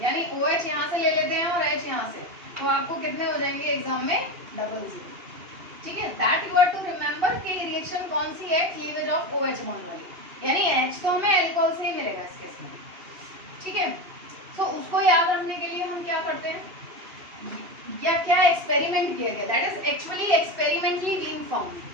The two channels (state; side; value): late; left; 2.8 ms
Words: यानी OH यहाँ से ले लेते हैं और H यहाँ से, तो आपको कितने हो जाएंगे एग्जाम में, 00, ठीक है। That you are to remember कि रिएक्शन कौन सी है, क्लीवेज ऑफ OH बॉन्ड वाली, यानी H तो हमें अल्कोहल से ही मिलेगा इस केस में, ठीक है। तो उसको याद रखने के लिए हम क्या करते हैं, या क्या एक्सपेरिमेंट किया गया, that is actually experimentally being found.